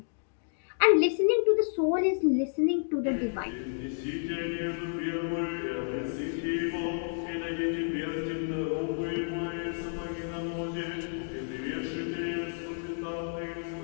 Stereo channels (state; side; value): silent; right; digital silence